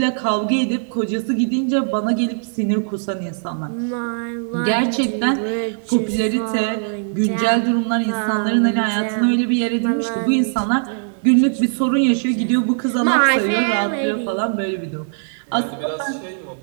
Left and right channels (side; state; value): left; silent; digital silence